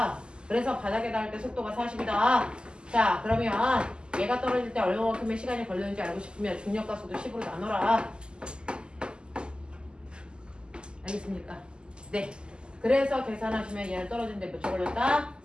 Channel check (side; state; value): left; late; 0.048 ms